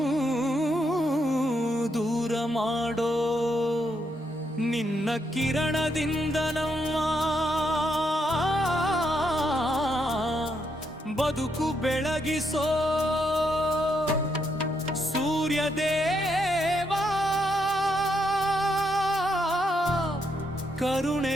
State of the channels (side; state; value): both; normal; correlation 0.78